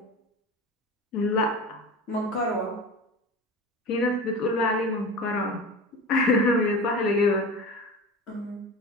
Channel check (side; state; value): both; normal; correlation 0.31